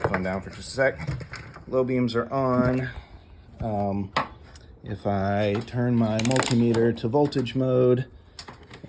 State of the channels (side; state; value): both; identical; correlation 1.00